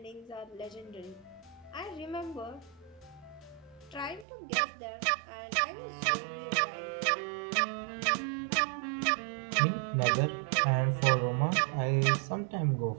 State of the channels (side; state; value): left; drops out; at 4.2 s